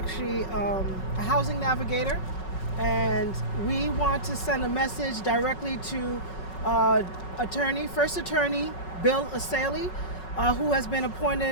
a housing navigator, and we want to send a message directly to First Attorney Bill Assaley, who has been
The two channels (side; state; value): right; late; 5.4 ms